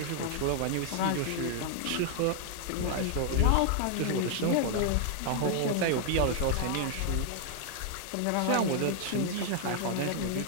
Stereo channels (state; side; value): different; both; correlation 0.00